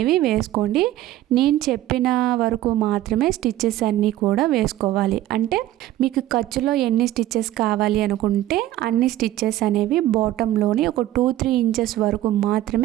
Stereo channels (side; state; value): left; quieter; 14.3 dB